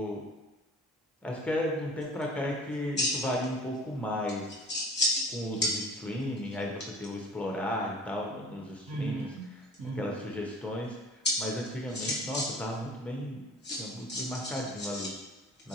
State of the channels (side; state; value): both; normal; correlation 0.44